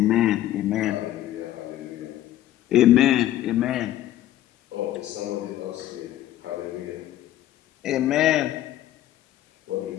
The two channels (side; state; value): right; quieter; 13.4 dB